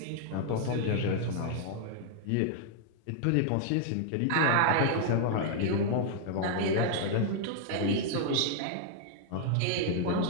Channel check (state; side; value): different; both; correlation -0.01